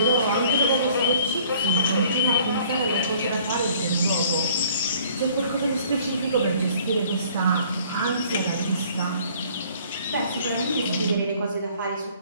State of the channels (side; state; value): both; inverted; correlation -0.56